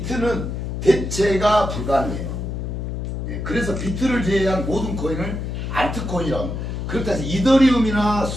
대체가 불가능해요. 그래서 비트를 제외한 모든 코인을 알트코인이라고 합니다. 그렇다 해서 이더리움이나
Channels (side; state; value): left; noise; hum, 4 dB below the sound